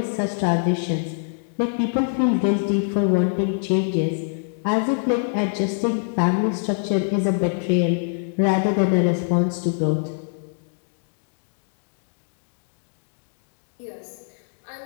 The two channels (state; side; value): silent; right; digital silence